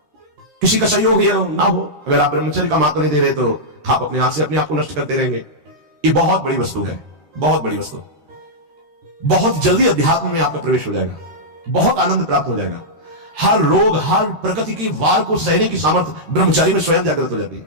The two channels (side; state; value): left; late; 13 ms